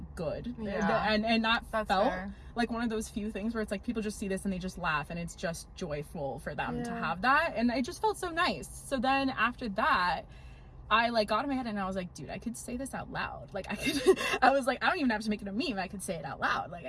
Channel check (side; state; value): both; identical; correlation 1.00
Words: good, and that felt fair. Like one of those few things where it's like people just see this and they just laugh, and it's just joyful for them to have that, and it just felt so nice. So then after that, I like got in my head and I was like, dude, I could say this out loud. Like I was like, I don't even have to make it a meme, I could say it out loud.